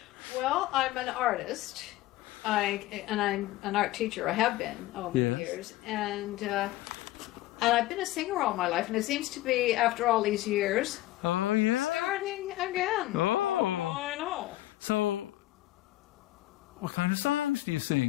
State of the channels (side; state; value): right; quieter; 16.4 dB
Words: Well, I'm an artist. I'm an art teacher. I have been over the years, and I've been a singer all my life. And it seems to be, after all these years, starting again. Oh, I know. So, what kind of songs do you